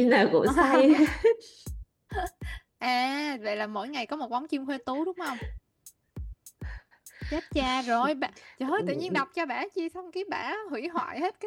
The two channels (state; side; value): identical; both; correlation 1.00